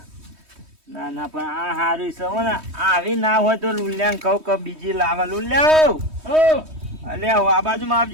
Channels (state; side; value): late; left; 3.2 ms